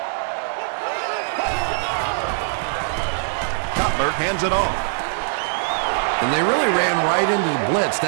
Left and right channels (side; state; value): left; silent; digital silence